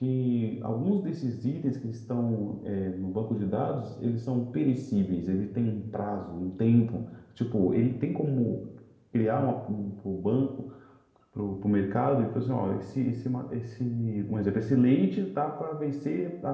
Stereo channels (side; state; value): both; identical; correlation 1.00